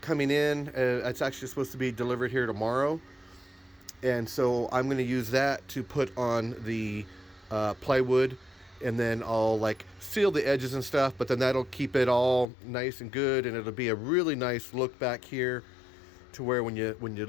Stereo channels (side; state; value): right; drops out; at 12.5 s